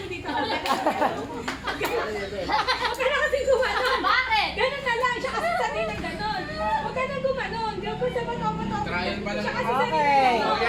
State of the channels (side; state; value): both; identical; correlation 1.00